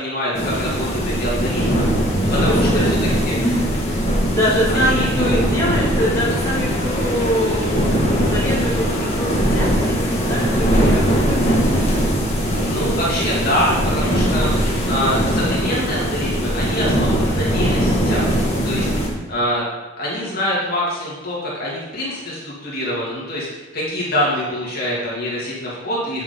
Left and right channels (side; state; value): both; normal; correlation 0.53